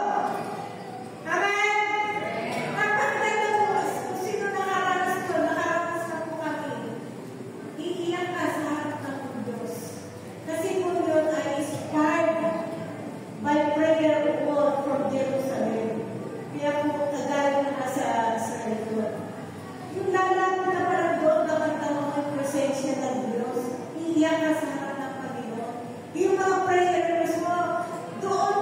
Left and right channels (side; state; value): both; identical; correlation 1.00